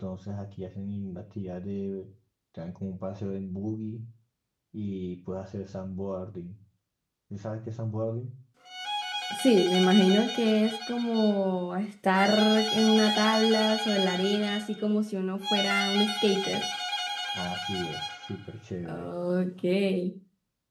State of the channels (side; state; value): both; identical; correlation 1.00